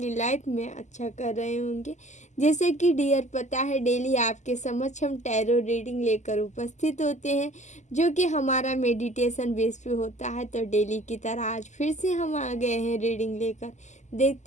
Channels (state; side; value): late; right; 0.34 ms